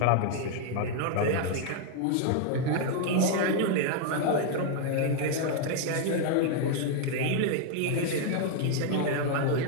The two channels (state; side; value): different; both; correlation 0.00